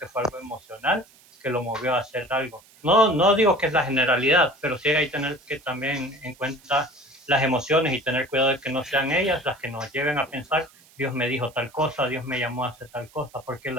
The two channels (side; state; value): right; noise; hiss, 27 dB below the sound